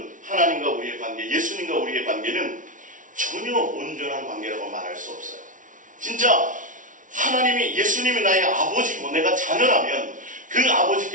하나님과 우리의 관계, 예수님과 우리의 관계는 전혀 온전한 관계라고 말할 수 없어요. 진짜 예수님이 나의 아버지고 내가 자녀라면 그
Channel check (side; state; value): left; late; 0.38 ms